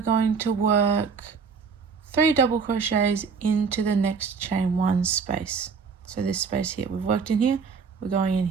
to work 3 double crochets into the next chain 1 space. So this space here, we've worked in here, we're going in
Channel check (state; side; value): quieter; left; 5.6 dB